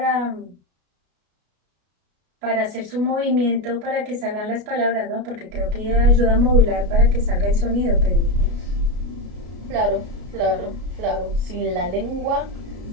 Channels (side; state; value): left; late; 33 ms